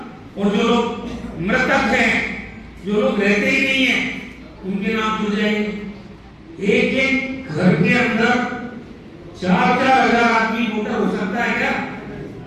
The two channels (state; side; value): identical; both; correlation 1.00